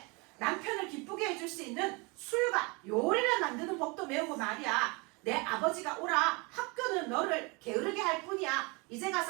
남편을 기쁘게 해줄 수 있는 술과 요리를 만드는 법도 배우고 말이야. 내 아버지가 오라. 학교는 너를 게으르게 할 뿐이야. 이제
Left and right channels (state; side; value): quieter; left; 28.4 dB